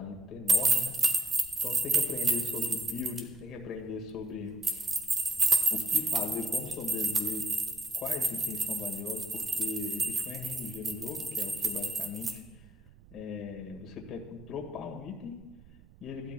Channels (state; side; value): noise; right; rumble, 23 dB below the sound